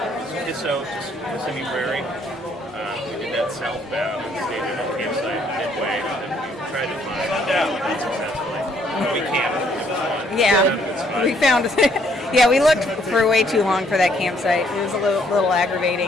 Kissimmee Prairie. We did that southbound and stayed in a campsite midway. And then we tried to find unsuccessfully. We camped. It was fun. Yeah, we found. Yeah, we looked for way too long for that campsite. It was a little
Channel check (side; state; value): both; normal; correlation 0.67